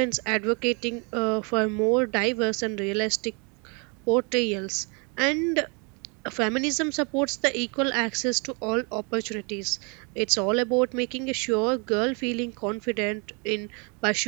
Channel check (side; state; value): left; quieter; 33.3 dB